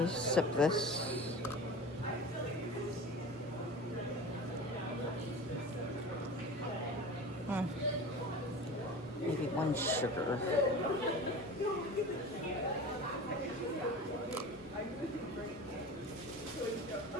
sip this. Maybe 1 sugar.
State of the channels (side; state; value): both; normal; correlation 0.34